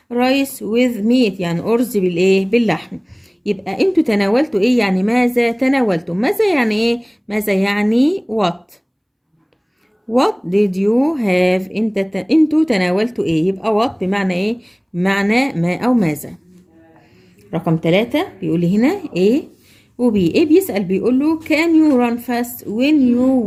rice with meat، يعني أرز بالايه؟ باللحم. يبقى انتوا تناولتوا ايه؟ يعني ماذا تناولتم. ماذا يعني ايه؟ ماذا يعني what did you have؟ انتوا تناولتوا ايه؟ يبقى what بمعنى ايه؟ بمعنى ما او ماذا. رقم 3 بيقول لي هنا ايه وبي. ايه بيسأل بيقول له can you run fast when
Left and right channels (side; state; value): both; identical; correlation 1.00